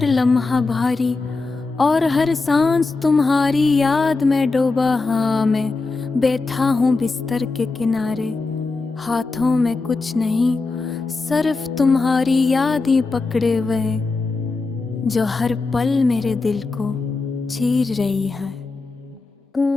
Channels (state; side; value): quieter; right; 3.8 dB